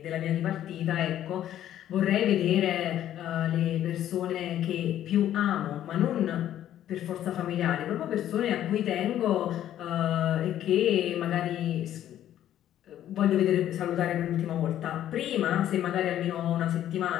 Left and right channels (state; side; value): quieter; right; 11.7 dB